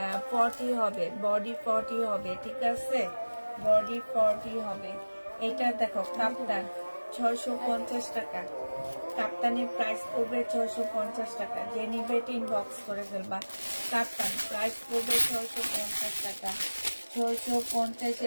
40 হবে, বডি 40 হবে, ঠিক আছে? বডি 40 হবে। এটা দেখো কাপ্তান 650 টাকা। কাপ্তানের প্রাইস পড়বে 650 টাকা। জেনিবেট ইনবক্স করে ফেলবা। কাপ্তান প্রাইস পড়বে 650 টাকা।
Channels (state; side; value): inverted; both; correlation -1.00